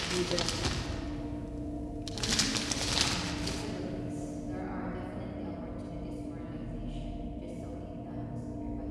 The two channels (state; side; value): identical; both; correlation 1.00